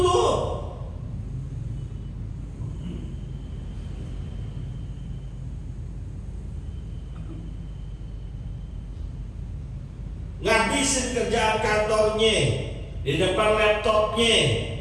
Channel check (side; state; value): both; identical; correlation 1.00